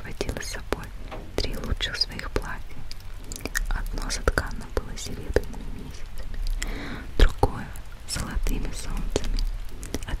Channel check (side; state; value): both; identical; correlation 1.00